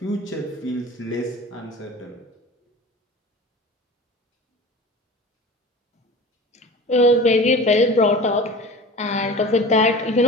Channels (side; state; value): both; normal; correlation 0.37